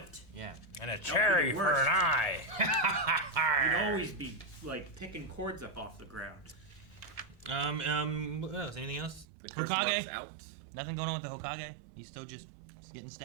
Yeah. And a cherry for worst. an eye. You'd always be, like, picking cords up off the ground. What else? Anything else? The curse mark's Hokage? out. Nothing going on with the Hokage? He's still just getting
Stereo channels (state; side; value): drops out; left; at 9.2 s